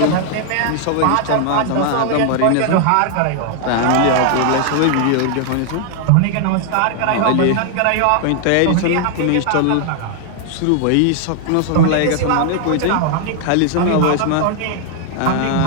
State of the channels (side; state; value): both; different; correlation 0.00